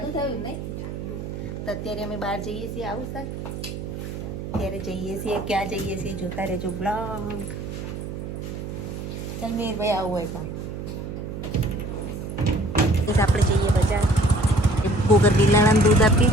થયું નહીં. તો અત્યારે અમે બહાર જઈએ છીએ, આવું સર ત્યારે જઈએ છીએ, ક્યાં જઈએ છીએ જોતા રહેજો બ્લોગ. ચાલ મીરભાઈ આવું હોય પણ આપણે જઈએ બજાર. ગોગર બિલાડાને દૂધ આપી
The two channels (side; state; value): right; noise; hum, 7 dB below the sound